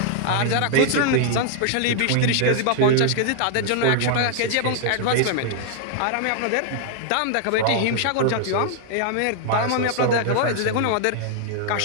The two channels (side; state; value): both; different; correlation 0.00